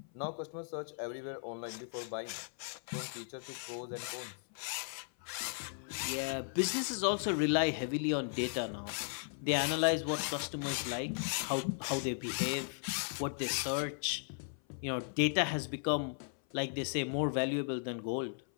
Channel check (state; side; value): silent; right; 53 dB below the other